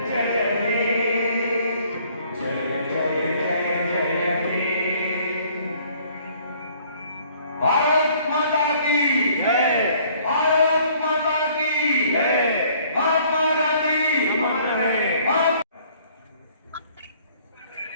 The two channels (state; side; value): inverted; both; correlation -0.59